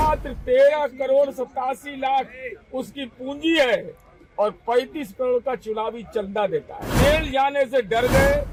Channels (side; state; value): both; identical; correlation 1.00